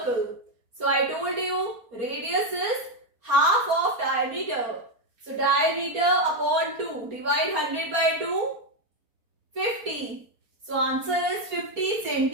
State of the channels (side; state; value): left; late; 4.3 ms